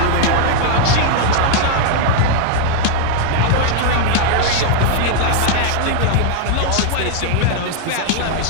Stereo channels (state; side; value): different; both; correlation -0.01